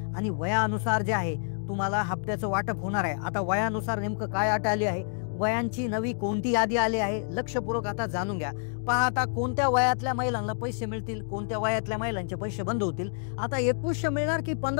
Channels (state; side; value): silent; right; digital silence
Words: आणि वयानुसार जे आहे तुम्हाला हप्त्याचं वाटप होणार आहे. आता वयानुसार नेमकं काय अट आली आहे, वयांची नवी कोणती यादी आली आहे, लक्षपूर्वक आता जाणून घ्या. पहा आता कोणत्या वयातल्या महिलांना पैसे मिळतील, कोणत्या वयातल्या महिलांचे पैसे बंद होतील. आता 2100 मिळणार की